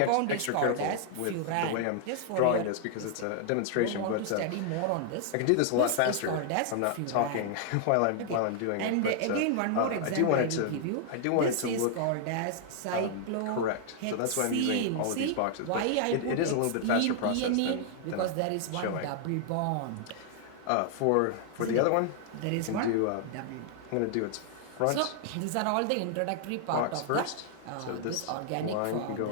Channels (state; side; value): different; both; correlation 0.00